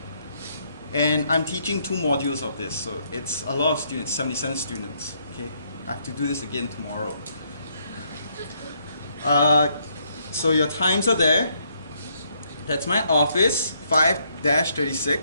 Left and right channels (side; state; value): both; inverted; correlation -0.72